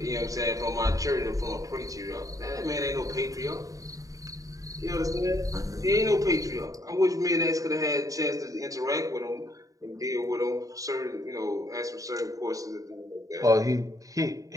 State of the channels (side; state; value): left; late; 0.16 ms